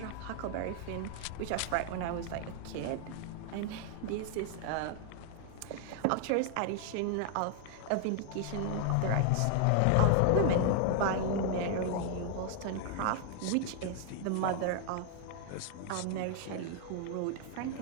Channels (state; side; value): different; both; correlation 0.00